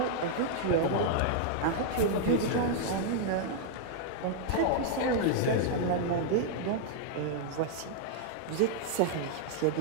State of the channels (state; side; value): different; both; correlation -0.01